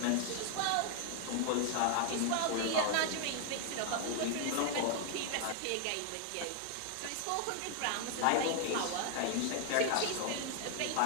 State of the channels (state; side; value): different; both; correlation 0.00